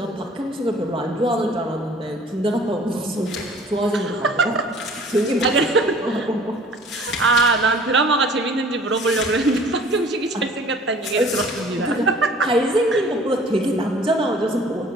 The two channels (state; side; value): normal; both; correlation 0.50